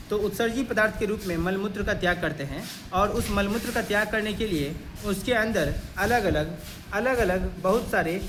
तो उत्सर्जी पदार्थ के रूप में मलमूत्र का त्याग करते हैं और उस मलमूत्र का त्याग करने के लिए उसके अंदर अलग अलग बहुत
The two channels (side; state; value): both; identical; correlation 1.00